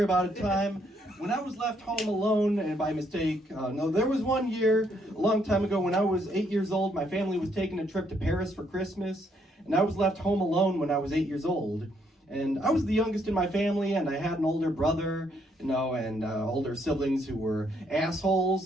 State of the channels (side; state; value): both; normal; correlation 0.72